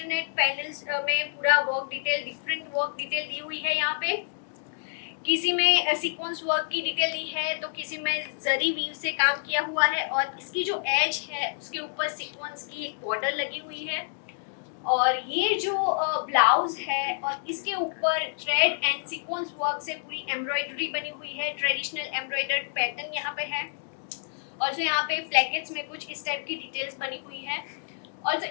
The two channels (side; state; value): right; silent; digital silence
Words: पैनल्स में पूरा work detail different work detail दी हुई है। यहाँ पे किसी में सीक्वेंस वर्क की डिटेल दी है तो किसी में जरी वीव से काम किया हुआ है और इसकी जो एज है उसके ऊपर सीक्वेंस की एक बॉर्डर लगी हुई है और ये जो ब्लाउज है और इसके ऊपर थ्रेड एंड सीक्वेंस वर्क से पूरी एम्ब्रॉयडरी बनी हुई है। ट्रेडिशनल एम्ब्रॉयडर्ड पैटर्न यहाँ पे है और जो यहाँ पे प्लेकेट्स में कुछ इस टाइप की डिटेल्स बनी हुई है और जो